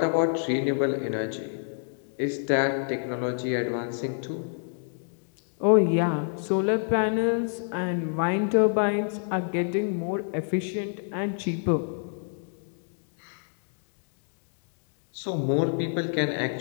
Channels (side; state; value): right; silent; 59 dB below the other